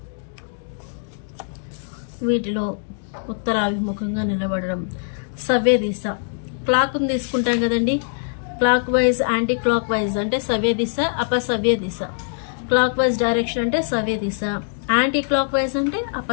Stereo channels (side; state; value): right; silent; digital silence